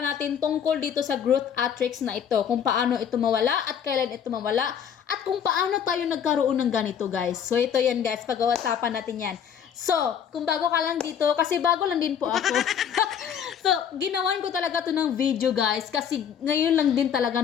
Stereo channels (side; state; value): right; quieter; 8.3 dB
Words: natin tungkol dito sa growth matrix na ito. Kung paano ito mawala at kailan ito mawala. At kung paano tayo nagkaroon ng ganito, guys. So, ito yan, guys. Pag-uusapan natin yan. So, kung bago ka lang dito, kasi bago lang din po ako. So, ginawan ko talaga to ng video, guys. Kasi ngayon lang din talaga